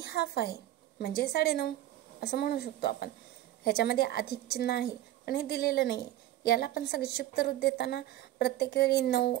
हाफ आहे म्हणजे 9.5 असं म्हणू शकतो आपण. ह्याच्यामध्ये अधिक चिन्ह आहे पण हे दिलेलं नाही. याला पण संक्षिप्त रूप देताना प्रत्येक वेळी 9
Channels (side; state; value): left; quieter; 14.2 dB